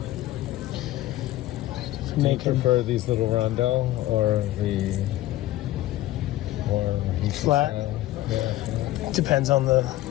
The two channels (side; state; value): right; quieter; 15.4 dB